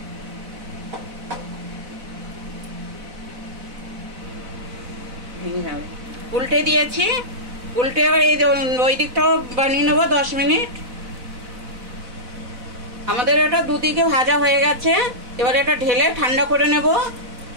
উল্টে দিয়েছি। উল্টে এবার এই ওই দিকটাও বানিয়ে নেবো 10 মিনিট। আমাদের এটা দুদিকে ভাজা হয়ে গেছে। এবার এটা ঢেলে ঠান্ডা করে নেব।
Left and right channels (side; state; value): left; late; 4.0 ms